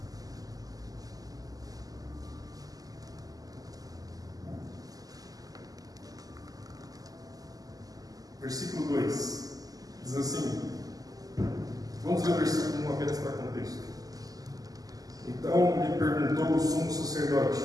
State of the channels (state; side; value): late; left; 0.17 ms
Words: Versículo 2. Diz assim. Vamos ler o versículo 1 apenas para contexto. Então lhe perguntou o sumo sacerdote: